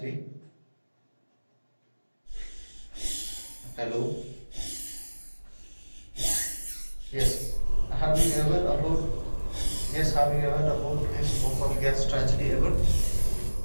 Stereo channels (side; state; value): both; inverted; correlation -1.00